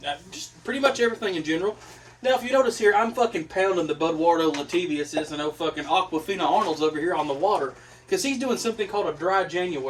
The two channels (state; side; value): identical; both; correlation 1.00